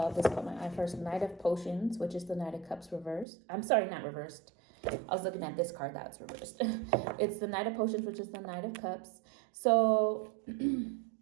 this caught my eye first. Knight of Potions, which is the Knight of Cups reversed. I'm sorry, not reversed. I was looking at this card that's reversed. It's the Knight of Potions, which is the Knight of Cups. So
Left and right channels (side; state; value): left; drops out; at 3.2 s